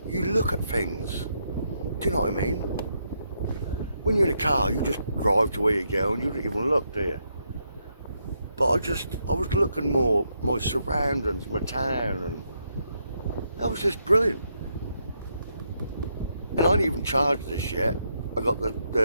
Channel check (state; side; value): inverted; both; correlation -0.79